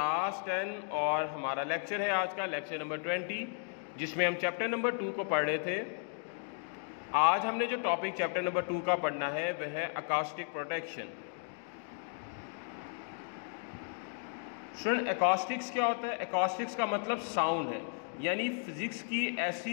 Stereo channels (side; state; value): right; silent; 55 dB below the other